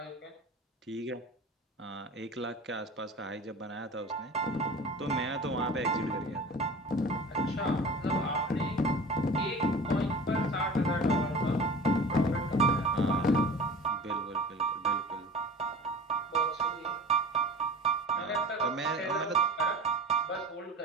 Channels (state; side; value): normal; both; correlation 0.38